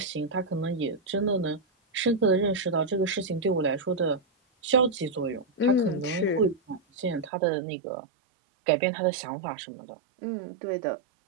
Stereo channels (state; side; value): drops out; left; at 7.3 s